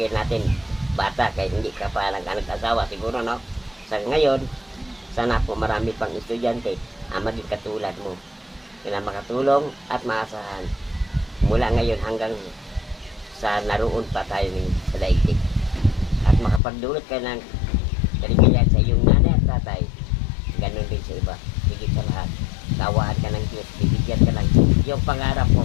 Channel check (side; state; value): right; drops out; at 16.6 s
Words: natin bata kahit hindi ka pa nag-asawa siguro, no? Sa ngayon, sana po marami pang estudyante ang maging katulad mo na makatulong at maasahan mula ngayon hanggang sa naroon pa tayo sa daigdig at makapagdulot ka ng kaligayahan sa iyong nanay at tatay. Ganun din sa iba. Higit sa lahat, kawaan ka ng Diyos, bibigyan ka ng yung pangarap